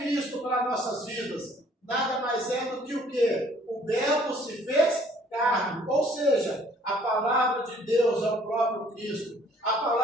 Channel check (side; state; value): both; normal; correlation 0.58